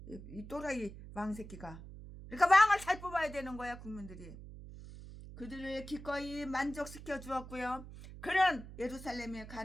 이 또라이 왕 새끼가. 그러니까 왕을 잘 뽑아야 되는 거야. 국민들이 그들을 기꺼이 만족시켜 주었고요. 그는 예루살렘에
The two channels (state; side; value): noise; right; hum, 14 dB below the sound